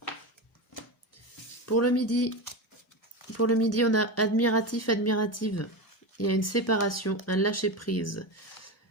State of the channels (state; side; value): normal; both; correlation 0.19